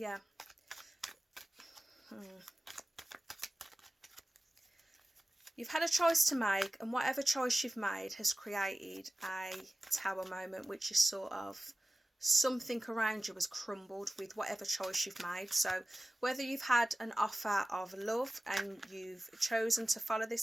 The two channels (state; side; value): normal; both; correlation 0.96